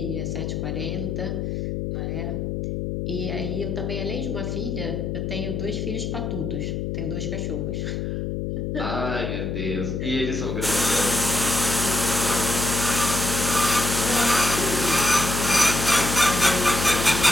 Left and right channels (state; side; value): noise; left; hum, 2 dB below the sound